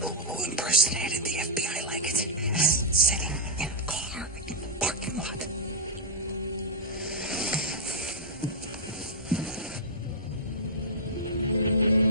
who impersonated the FBI like it? Sitting in a car in the parking lot.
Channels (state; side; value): normal; both; correlation -0.07